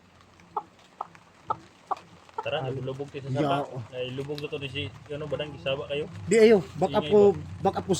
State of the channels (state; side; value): identical; both; correlation 1.00